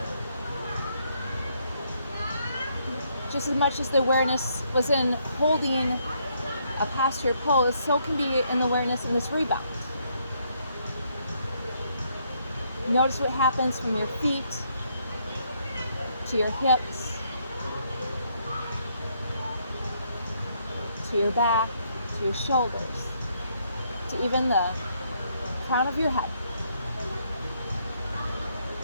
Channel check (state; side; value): inverted; both; correlation -0.73